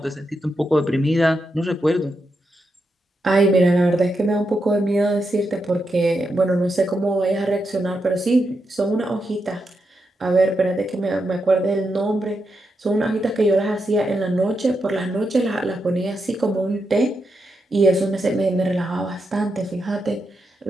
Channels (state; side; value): normal; both; correlation 0.85